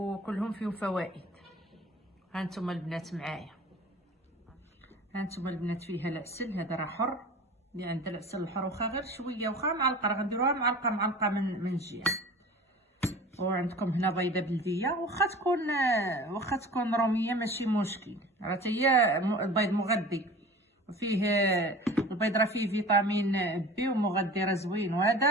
فيهم فوائد. هانتوما البنات معايا، هانتوما البنات فيها العسل، هذا راه حر، اللي عنده العسل الحر واخا غير شويه، واخا معلقه، راه غنديروها معلقه من الجهه. وعندكم هنا بيضه بلديه، واخا تكون روميه ماشي مشكل، راه هي البيض مغذي، وفيه البيض راه فيه فيتامين بي ومغذي راه زوين. وهذا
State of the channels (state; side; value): normal; both; correlation 0.40